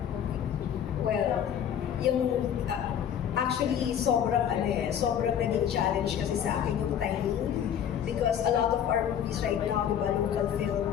Well, yung actually sobrang naging challenge kasi sa akin yung timing because a lot of our movies right now, di ba, local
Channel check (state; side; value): quieter; right; 9.2 dB